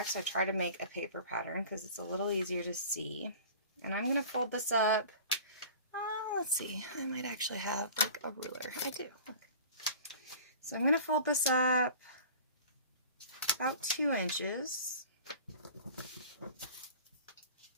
I try to make a paper pattern because it's a little easier to see. And I'm going to fold this up. Let's see, I might actually have like a ruler. I do. Okay. So I'm going to fold this up about 2 inches,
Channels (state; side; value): inverted; both; correlation -0.41